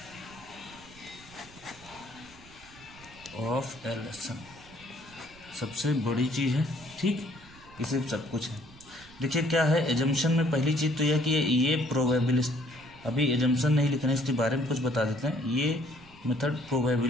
ऑफ LSM सबसे बड़ी चीज़ है, ठीक, इसे सब कुछ है। देखिए क्या है एजम्पशन में, पहली चीज़ तो यह कि ये प्रोबेबिलिस्ट, अभी एजम्पशन नहीं लिखना है, इसके बारे में कुछ बता देते हैं। ये मेथड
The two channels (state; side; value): noise; right; rumble, 23 dB below the sound